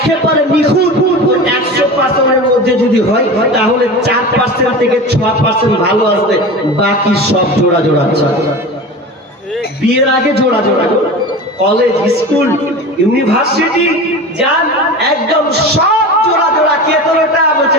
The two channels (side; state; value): both; normal; correlation 0.31